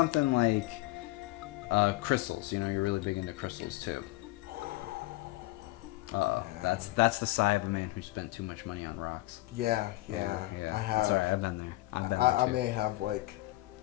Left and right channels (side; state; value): right; quieter; 19.2 dB